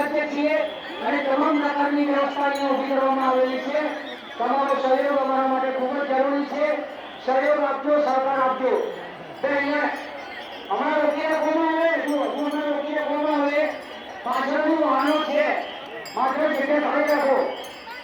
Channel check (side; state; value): both; identical; correlation 1.00